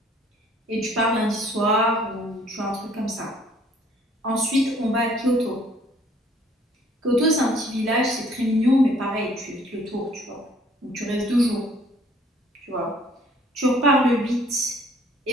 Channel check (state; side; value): normal; both; correlation 0.59